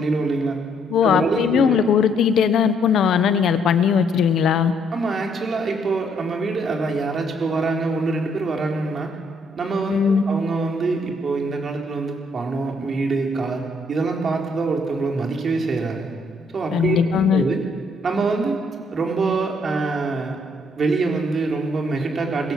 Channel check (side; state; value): both; normal; correlation 0.69